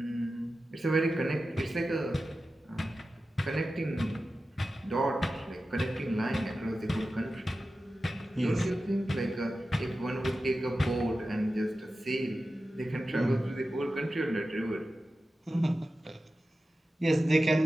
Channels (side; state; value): both; normal; correlation 0.93